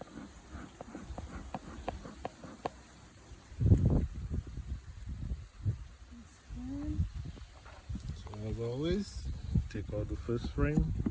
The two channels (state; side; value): identical; both; correlation 1.00